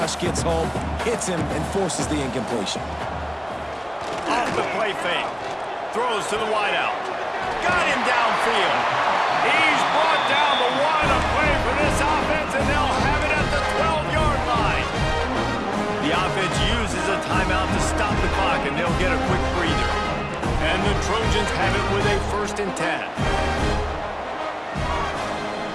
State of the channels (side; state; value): both; identical; correlation 1.00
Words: gets home, hits him, and forces the incompletion. Off the play fake. Throws to the wideout. Got him downfield. He's brought down, but what a play for this offense, and they'll have it at the 12-yard line. The offense uses a timeout to stop the clock, and they'll get a quick breather. And the Trojans have it with a 1st and 10.